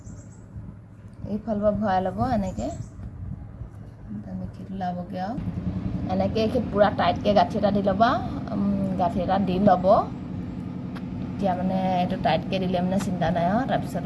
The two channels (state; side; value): identical; both; correlation 1.00